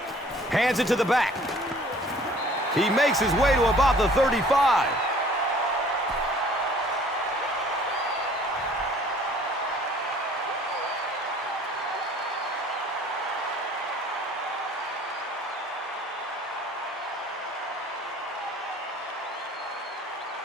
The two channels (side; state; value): both; normal; correlation 0.53